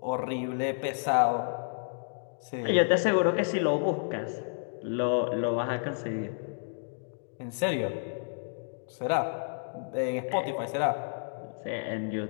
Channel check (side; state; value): right; silent; digital silence